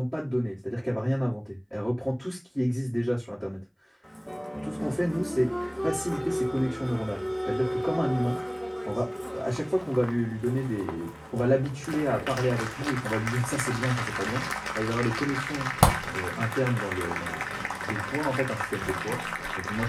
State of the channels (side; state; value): both; identical; correlation 1.00